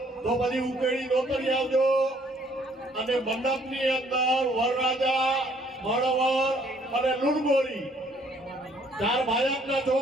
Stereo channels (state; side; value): normal; both; correlation 0.63